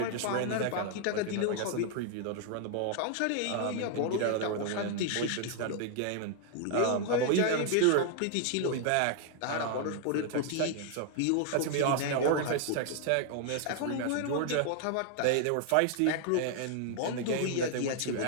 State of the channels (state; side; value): different; both; correlation 0.00